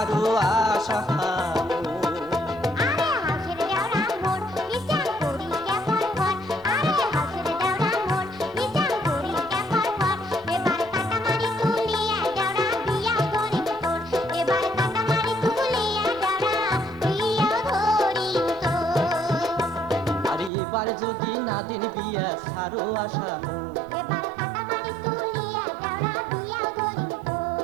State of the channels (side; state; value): left; drops out; at 20.5 s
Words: আশা আরে হাসের দেওরা মোর বিচার করি কেমন ঘর আরে হাসের দেওরা মোর বিচার করি কেমন ঘর এবার কাটামারি তুলিয়া দেওরা বিয়া করিম তোর এবার কাটামারি তুলিয়া দেওরা বিয়া করিম তোর আরে এবার যদি না দেন বিয়া সারো আশা এবার কাটামারি তুলিয়া দেওরা বিয়া করিম তোর